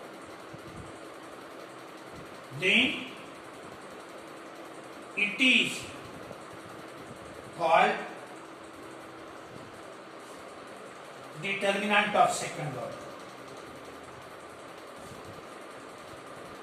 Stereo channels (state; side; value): identical; both; correlation 1.00